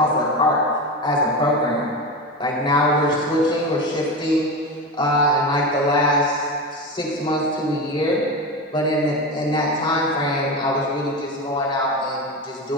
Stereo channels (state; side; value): normal; both; correlation 0.22